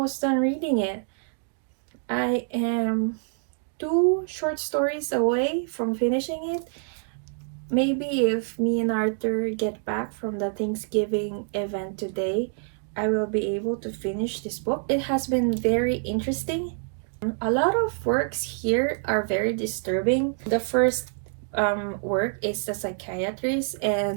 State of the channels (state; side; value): silent; left; 61 dB below the other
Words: done reading it. I am 2 short stories away from finishing it. Maybe if me and Arthur get back from the Thanksgiving event today, I will be able to finish this book. It has been very interesting. A lot of works here are very disturbing. The first work is The Psychiatrist,